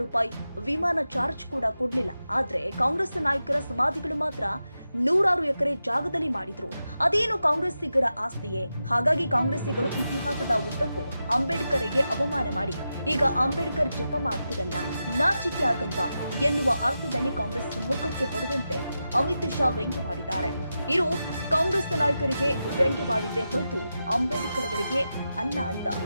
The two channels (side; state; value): both; inverted; correlation -0.90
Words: ರೂಪಾಯಿ ವಿಮಾನ ಚಾರ್ಜ್ ಕೂಡ ಕೊಡ್ಲಿಲ್ಲ. ಆದ್ರೆ ಕಾಂಗ್ರೆಸ್ ನಾಯಕರ ಸಮಾಧಿಗಳು ಮಾತ್ರ 100 ಎಕರೆ ಜಾಗದಲ್ಲಿ ಮಾಡಿದ್ರು. ಅದೇನು ಕಾಂಗ್ರೆಸ್ಸಿಗರ ಆಸ್ತಿಯೇ? ಹಾಗಾಗಿ ಕಾಂಗ್ರೆಸ್ಸಿಗರು ಇತಿಹಾಸದ ಉದ್ದಕ್ಕೂ ಅಂಬೇಡ್ಕರ್ಗೆ ಅವಮಾನ ಮಾಡಿ ಈಗ ಅಂಬೇಡ್ಕರ್ ಜಪ ಮಾಡ್ತಿರಲ್ಲ, ನಾಚಿಕೆ ಆಗಲ್ವಾ ಎನ್ನುವ ಅರ್ಥದಲ್ಲಿ ಕಾಂಗ್ರೆಸ್ ಮುಖಕ್ಕೆ ಹೊಡೆದಂತೆ ಅಮಿತ್ ಶಾ ವ್ಯಂಗ್ಯವಾಡಿದ್ದಾರೆ. ಇದು ಕಾಂಗ್ರೆಸ್ ನಾಯಕರಿಗೆ ವ್ಯಂಗ್ಯವಾಡಿದ್ದೇ ಹೊರತು ಅಂಬೇಡ್ಕರ್ ಅವರಿಗೆ ಅಲ್ಲ ಅಂತ